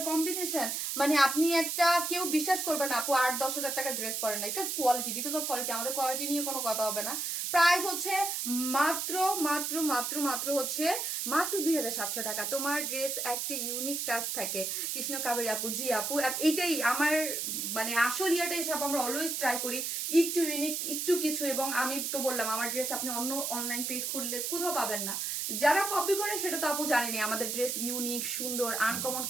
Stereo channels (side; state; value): right; noise; hiss, 2 dB below the sound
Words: কম্বিনেশন, মানে আপনি একটা কেউ বিশ্বাস করবে না আপু 8-10 হাজার টাকার ড্রেস পরেন না, because quality, because of quality. আমাদের কোয়ালিটি নিয়ে কোনো কথা হবে না। প্রাইস হচ্ছে মাত্র মাত্র মাত্র মাত্র হচ্ছে মাত্র 2,700 টাকা। তোমার ড্রেস একটা ইউনিক টাচ থাকে, কৃষ্ণ কাবেরী আপু। জি আপু, এটাই আমার মানে আসল ইয়াটা হিসাব, আমরা অলওয়েজ ট্রাই করি একটু ইউনিক, একটু কিছু। এবং আমি তো বললাম, আমার ড্রেস আপনি অন্য অনলাইন পেজ খুললে কোথাও পাবেন না। যারা কপি করে সেটা তো আপু জানেনি, আমাদের ড্রেস ইউনিক, সুন্দর, আনকমন